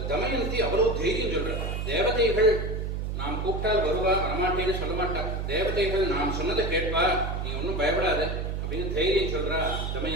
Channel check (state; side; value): noise; right; hum, 2 dB below the sound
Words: தமயந்தி அவ்வளவு தைரியம் சொல்ற. தேவதைகள் நாம் கூப்பிட்டால் வருவா, வரமாட்டேன்னு சொல்ல மாட்டா. தேவதைகள் நாம் சொன்னதை கேட்பா, நீ ஒன்னும் பயப்படாத அப்படின்னு தைரியம் சொல்றா